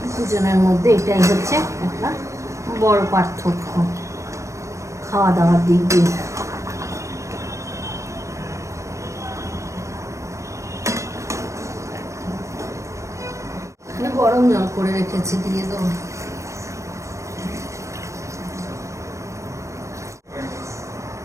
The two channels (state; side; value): late; left; 0.15 ms